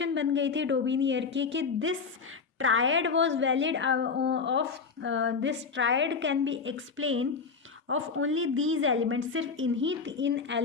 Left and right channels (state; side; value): quieter; right; 5.1 dB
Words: बन गई थी डोबिनियर की कि this triad was valid this triad can be explain of only these elements. सिर्फ इन